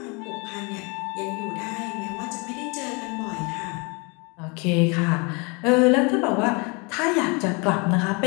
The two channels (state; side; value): quieter; right; 30.5 dB